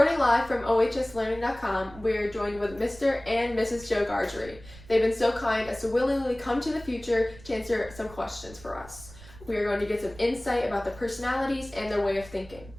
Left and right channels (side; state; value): right; noise; rumble, 19 dB below the sound